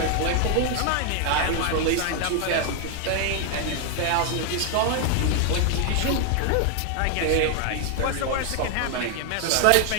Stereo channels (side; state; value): both; different; correlation 0.00